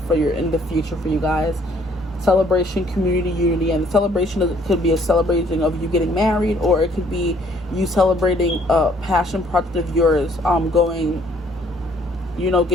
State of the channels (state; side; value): normal; both; correlation 0.62